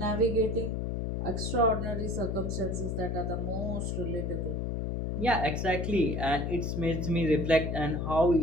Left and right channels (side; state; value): left; noise; hum, 1 dB below the sound